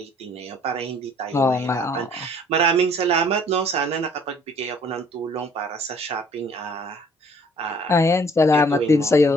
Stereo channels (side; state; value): both; normal; correlation 0.57